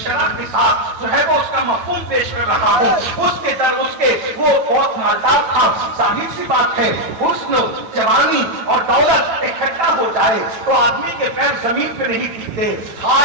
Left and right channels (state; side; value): late; left; 8.9 ms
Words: شرح کے ساتھ جو ہے وہ اس کا مفہوم پیش کر رہا ہوں۔ اس کے در اس کے وہ بہت مالدار تھا۔ ظاہر سی بات ہے، حسن، جوانی اور دولت اکٹھا ہو جائے تو آدمی کے پیر زمین پہ نہیں ٹکتے۔